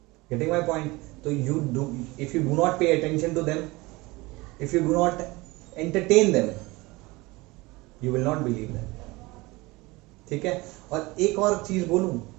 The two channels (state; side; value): quieter; left; 22.5 dB